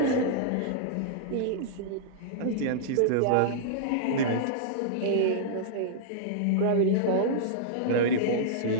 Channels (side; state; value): both; different; correlation -0.02